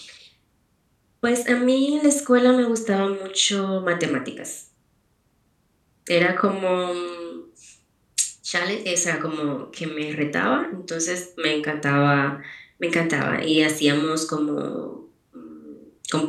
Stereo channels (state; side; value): identical; both; correlation 1.00